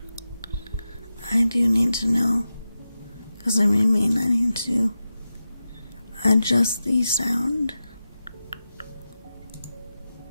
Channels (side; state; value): both; inverted; correlation -0.92